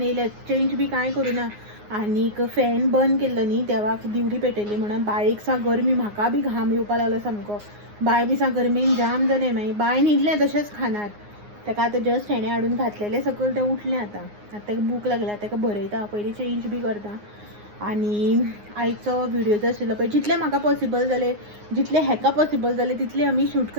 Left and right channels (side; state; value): left; late; 9.6 ms